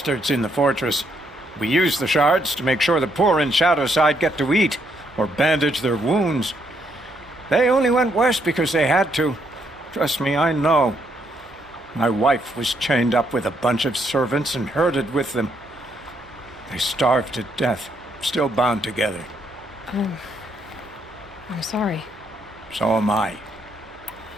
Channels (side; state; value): both; normal; correlation 0.74